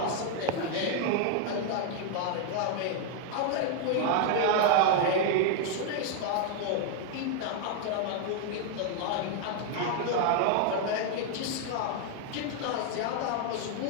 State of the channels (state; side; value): different; both; correlation 0.00